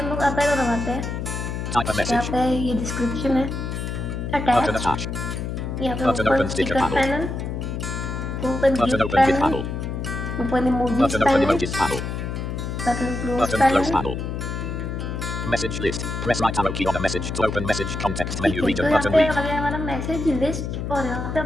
लोग अप एरो दबाते हैं, यहाँ पे ये डिस्क्रिप्शन है, अटैच, यहाँ पे open sticker panel, open GIF panel, open emojis panel, button close panel, Message list. Press right arrow key on a message to open message context menu region तो यहाँ button पे read. आ गया हमारा message list. और यहाँ पे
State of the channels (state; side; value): noise; left; hum, 4 dB below the sound